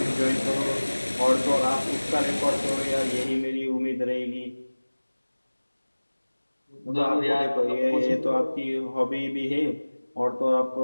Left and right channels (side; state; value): both; inverted; correlation -1.00